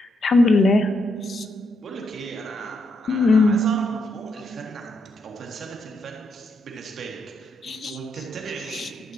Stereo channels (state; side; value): normal; both; correlation 0.79